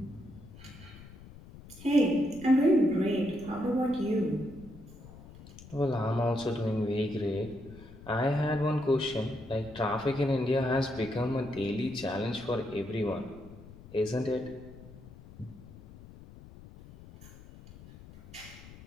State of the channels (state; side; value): noise; left; rumble, 18 dB below the sound